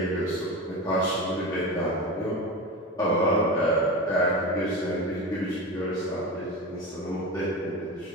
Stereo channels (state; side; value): normal; both; correlation 0.25